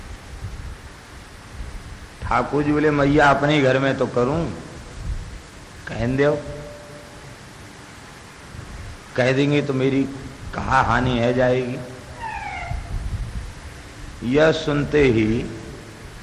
ठाकुर जी बोले मैया अपने घर में तो करूं, कहन दो, कह देंगे तो मेरी कहा हानि है जाएगी। यह सुनते ही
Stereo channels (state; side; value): identical; both; correlation 1.00